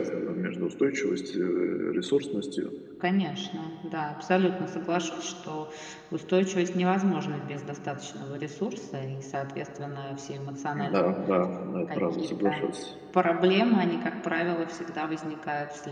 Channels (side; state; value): both; identical; correlation 1.00